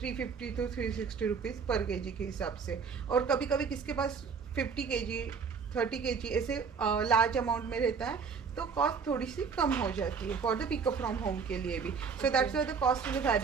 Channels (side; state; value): left; quieter; 5.8 dB